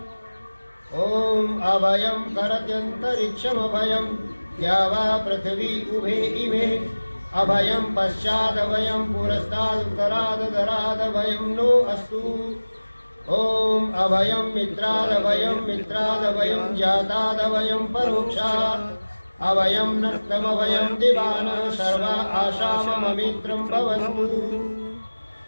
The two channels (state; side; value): inverted; both; correlation -1.00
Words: ओम अभयं करत्यन्तरिक्षमभयं या वा पृथिवी उभे इमे अभयं पश्चादभयं पुरस्तादुत्तरादधरादभयं नो अस्तु। ओम अभयं मित्रादभयं जातादभयं परोक्षात् अभयं नक्तमभयं दिवानः सर्वा आशाममित्रं भवन्तु